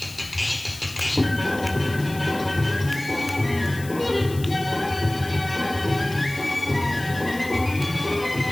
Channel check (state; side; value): noise; left; hiss, 16 dB below the sound